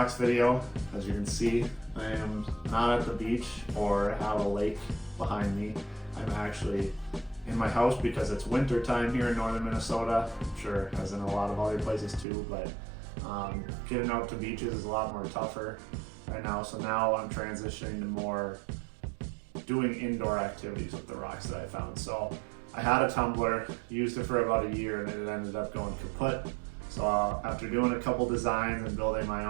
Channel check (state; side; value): drops out; left; at 12.2 s